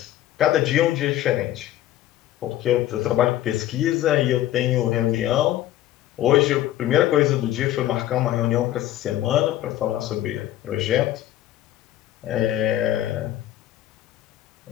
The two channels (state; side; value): quieter; right; 13.5 dB